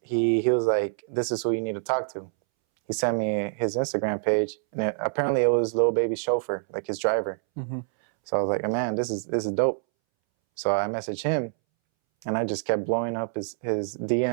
like, this is who you need to talk to. He sent me his Instagram page, and apparently it was Lil Baby's chauffeur, like his driver. Mm-hmm. So I was like, oh, man, this is dope. So I messaged him, and I just kept blowing up his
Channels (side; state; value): left; silent; 61 dB below the other